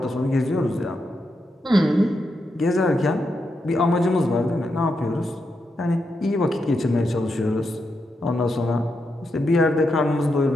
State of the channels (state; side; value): normal; both; correlation 0.84